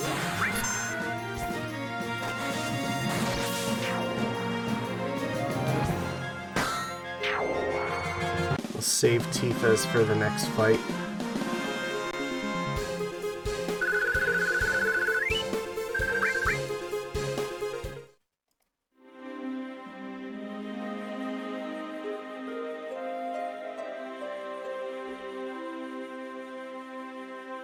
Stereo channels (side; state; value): both; identical; correlation 1.00